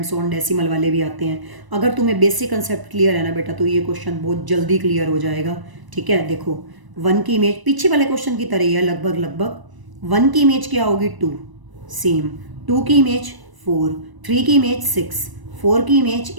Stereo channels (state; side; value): late; left; 1.0 ms